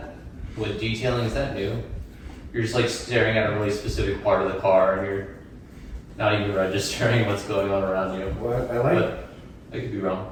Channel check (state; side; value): identical; both; correlation 1.00